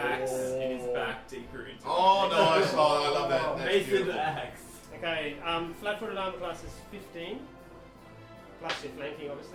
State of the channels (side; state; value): both; identical; correlation 1.00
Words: in his back deeper into Oh, it. nice! Oh, I love that. That's Mason beautiful. axe. Okay, flat-footed armor class is 15. Plus your flanking,